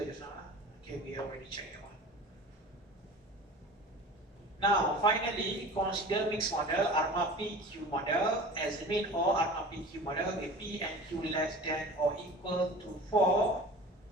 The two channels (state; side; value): normal; both; correlation 0.38